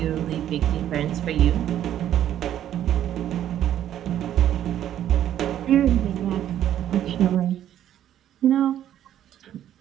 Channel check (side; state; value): left; quieter; 11.2 dB